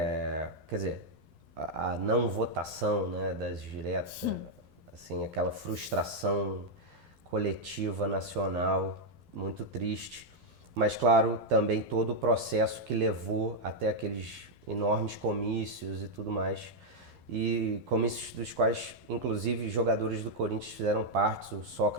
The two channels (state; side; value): late; left; 12 ms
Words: dizer, a não votação, né, das diretas, assim, aquela frustração coletiva nacional muito triste. Mas, claro, também todo o processo que levou até aqueles enormes comícios e tudo mais. E comícios dos quais, inclusive, jogadores do Corinthians fizeram parte, o